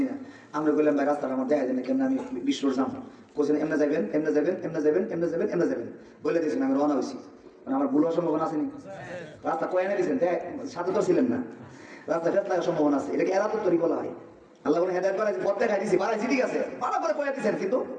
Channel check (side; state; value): both; identical; correlation 1.00